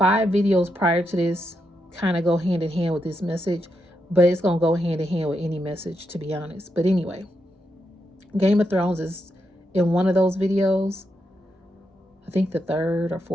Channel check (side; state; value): both; normal; correlation 0.83